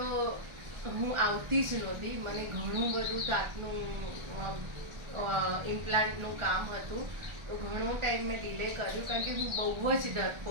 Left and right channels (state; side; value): late; left; 1.4 ms